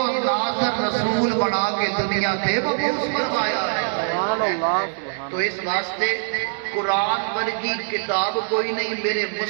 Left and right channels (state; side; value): silent; left; 64 dB below the other